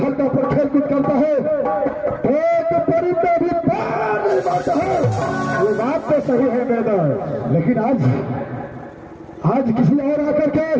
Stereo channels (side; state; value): both; identical; correlation 1.00